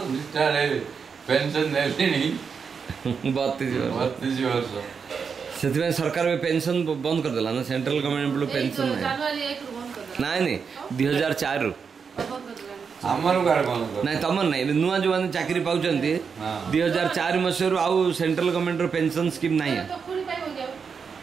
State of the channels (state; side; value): quieter; left; 6.0 dB